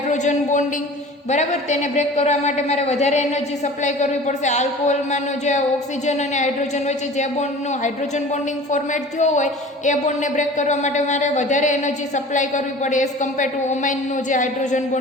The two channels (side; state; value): both; normal; correlation 0.41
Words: bonding. બરાબર. તેને બ્રેક કરવા માટે મારે વધારે એનર્જી સપ્લાય કરવી પડશે. આલ્કોહોલમાંનો જે ઓક્સિજન અને હાઇડ્રોજન વચ્ચે જે બોન્ડનું હાઇડ્રોજન બોન્ડિંગ ફોર્મેટ થયો હોય એ બોન્ડને બ્રેક કરવા માટે મારે વધારે એનર્જી સપ્લાય કરવી પડે એઝ કમ્પેર ટુ ઓમાઇનનું જે હાઇડ્રોજન